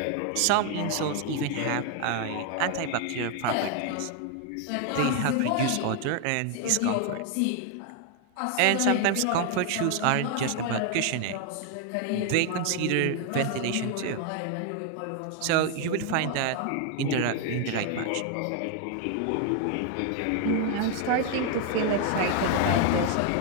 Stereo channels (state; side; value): different; both; correlation 0.00